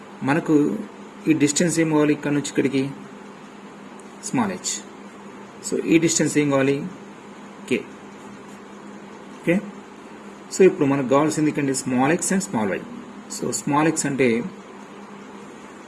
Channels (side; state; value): both; identical; correlation 1.00